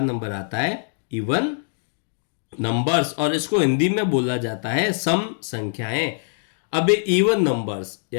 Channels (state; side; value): silent; right; digital silence